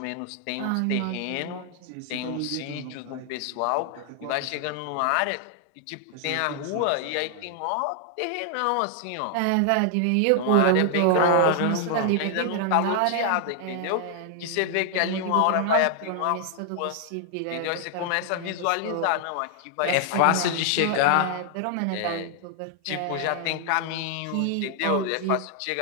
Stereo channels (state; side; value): different; both; correlation 0.00